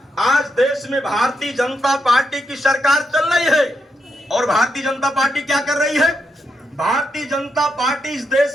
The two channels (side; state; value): both; normal; correlation 0.82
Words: आज देश में भारतीय जनता पार्टी की सरकार चल रही है। और भारतीय जनता पार्टी क्या कर रही है? भारतीय जनता पार्टी इस